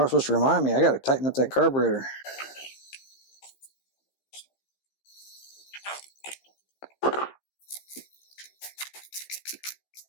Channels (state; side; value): late; right; 15 ms